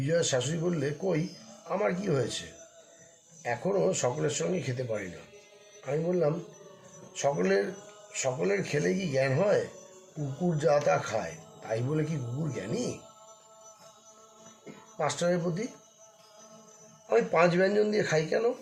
শাশুড়ি বললে, কই, আমার কি হয়েছে? এখনও সকলের সঙ্গে খেতে পারি না। আমি বললাম, সকলের খেলে কি জ্ঞান হয়? কুকুর যা তা খায়, তাই বলে কি কুকুর জ্ঞানী? মাস্টারের প্রতি, আমি 5 ব্যঞ্জন দিয়ে খাই কেন?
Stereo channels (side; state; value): both; identical; correlation 1.00